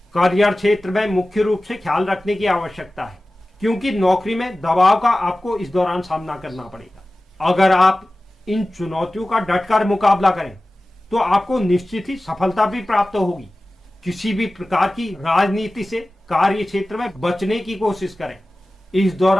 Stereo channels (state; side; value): normal; both; correlation 0.96